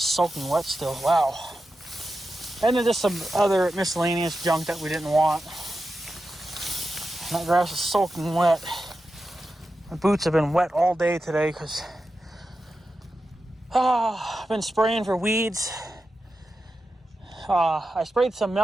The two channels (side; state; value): both; normal; correlation 0.91